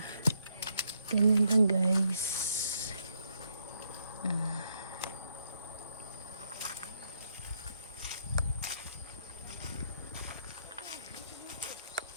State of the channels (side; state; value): both; inverted; correlation -0.75